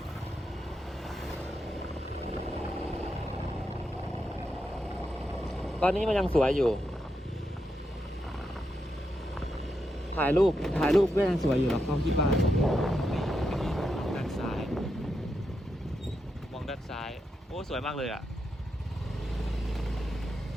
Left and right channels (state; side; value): normal; both; correlation 0.84